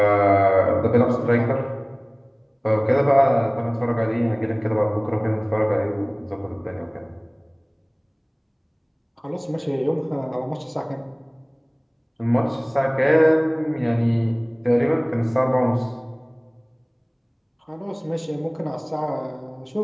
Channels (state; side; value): identical; both; correlation 1.00